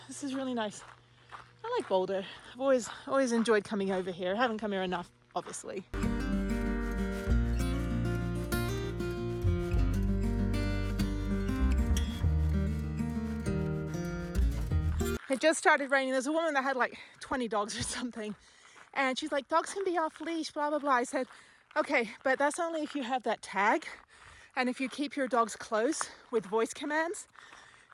this is really nice. I like Boulder. I've always enjoyed coming over here. I haven't come here enough, obviously. It just started raining. There's a woman that had like 20 dogs or something. And she's like, dogs can be off leash, blah, blah, blah. I said, Okay, but that's only if you have that tag and if you keep your dogs close with voice commands.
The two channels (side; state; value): both; identical; correlation 1.00